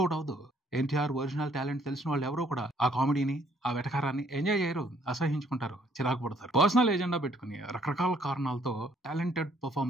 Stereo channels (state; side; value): normal; both; correlation 0.65